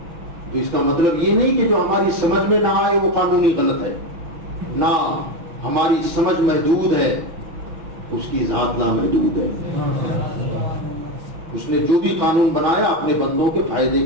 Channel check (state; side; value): late; left; 6.1 ms